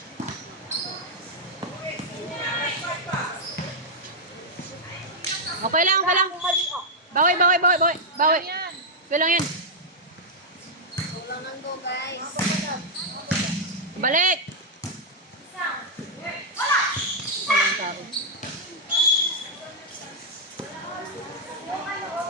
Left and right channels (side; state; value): both; normal; correlation -0.04